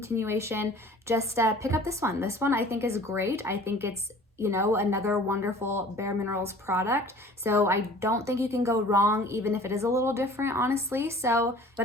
just pick up this one. This one I think is great. I think it's, you know, another wonderful bareMinerals product. So I don't think you can go wrong, even if it is a little different, honestly. So,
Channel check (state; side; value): normal; both; correlation 0.48